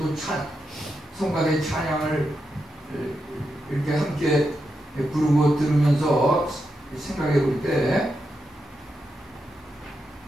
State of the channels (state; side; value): normal; both; correlation 0.86